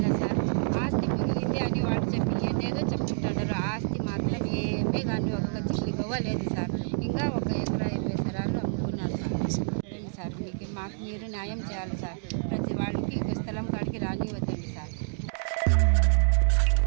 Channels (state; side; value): silent; left; digital silence